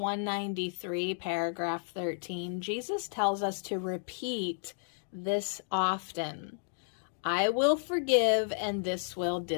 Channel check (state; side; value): silent; right; digital silence